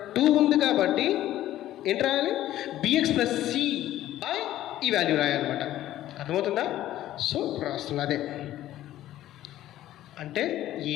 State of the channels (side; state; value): right; quieter; 13.7 dB